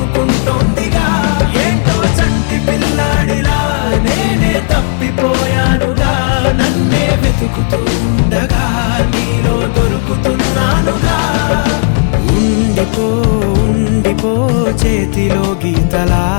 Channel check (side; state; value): right; silent; digital silence